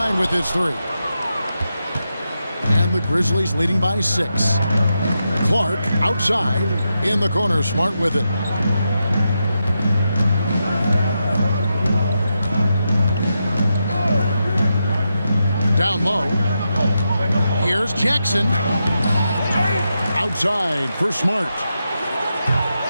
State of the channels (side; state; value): both; inverted; correlation -0.87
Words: with his 3. the Grizzlies leading by 6. Clark outside in the corner. Smart with it. Down low. Here's Jackson. Outside for Smart.